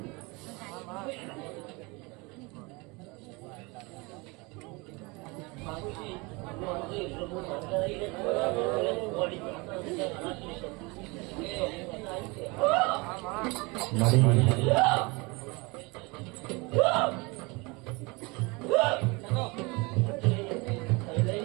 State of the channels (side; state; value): left; quieter; 26.5 dB